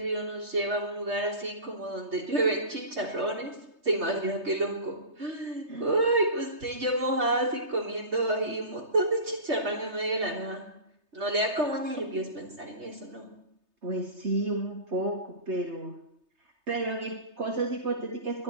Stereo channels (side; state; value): left; late; 3.3 ms